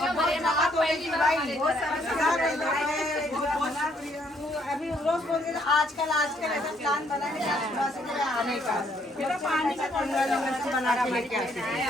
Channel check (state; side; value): normal; both; correlation 0.69